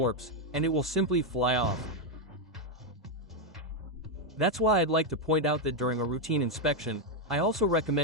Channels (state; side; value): normal; both; correlation 0.03